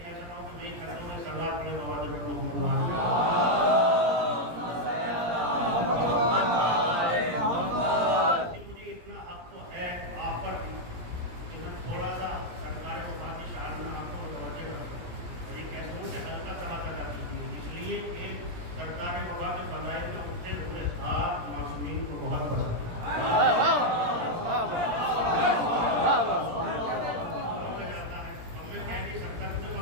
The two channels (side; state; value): left; late; 17 ms